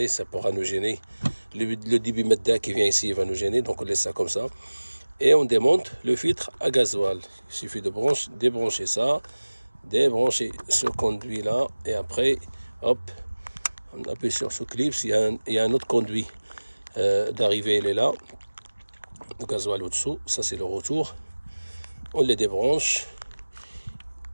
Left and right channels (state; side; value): inverted; both; correlation -1.00